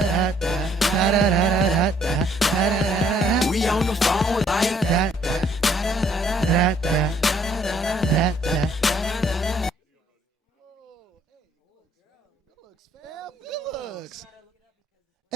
we on the phone like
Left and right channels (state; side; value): normal; both; correlation 0.64